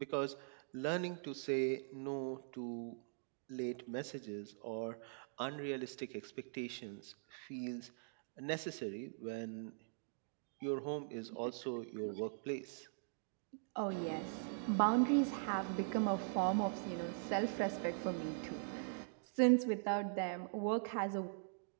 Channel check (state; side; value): silent; left; digital silence